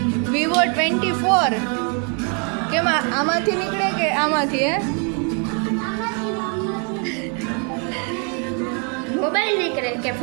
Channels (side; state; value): left; quieter; 38.3 dB